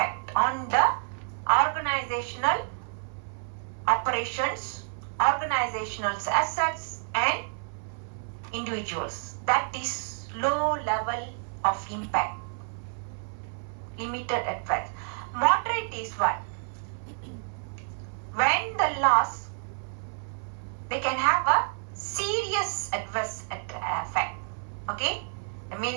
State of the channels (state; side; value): silent; left; 58 dB below the other